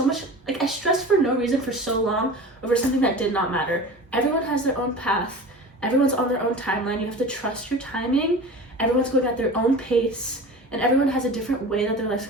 much, I stressed for no reason for so long over something that did not matter. Everyone has their own path. Everyone's on their own timeline. You have to trust your timing. Everyone's going at their own pace. And everyone has a different way that their life's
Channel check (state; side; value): normal; both; correlation 0.35